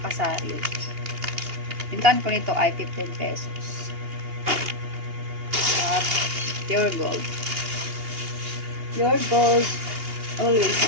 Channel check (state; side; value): late; left; 2.8 ms